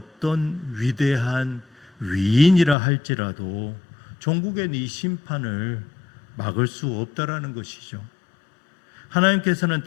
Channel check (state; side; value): drops out; right; at 2.8 s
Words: 위대한 위인이라 할지라도 종국엔 이 심판을 막을 수 없다라는 것이죠. 하나님께서는